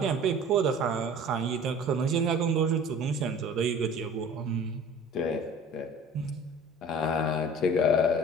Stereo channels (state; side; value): normal; both; correlation 0.44